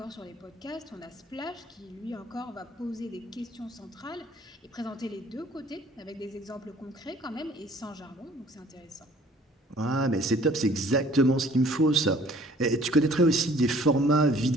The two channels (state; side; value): normal; both; correlation 0.55